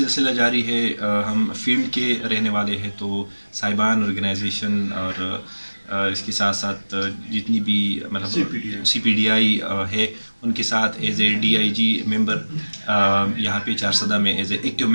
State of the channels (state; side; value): inverted; both; correlation -1.00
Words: جاری ہے، ہم فیلڈ کے رہنے والے ہیں، تو صاحبان آرگنائزیشن اور اس کے ساتھ ساتھ جتنی بھی مطلب سی پی ڈی آئی ہے ان کے ساتھ ایز اے ڈی آئی جی ممبر یہاں پہ چارسدہ میں ایز اے ایکٹیو